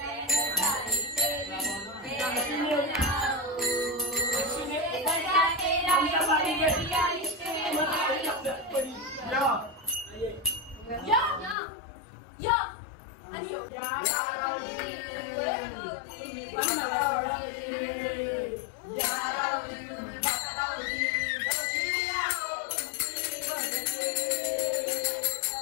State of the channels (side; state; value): right; drops out; at 11.6 s